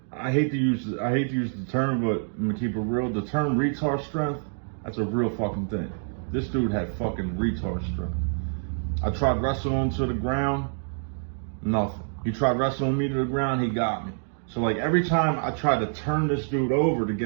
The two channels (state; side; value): silent; left; digital silence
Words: I hate to use the term, but I'm gonna keep it real. The term retard strength, that's a real fucking thing. This dude had fucking retard strength. I tried wrestling him to the ground, nothing. He tried wrestling me to the ground, he got me. So like every time I tried to turn this dude over to